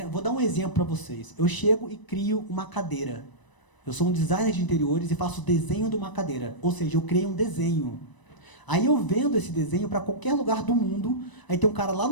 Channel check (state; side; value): late; right; 1.0 ms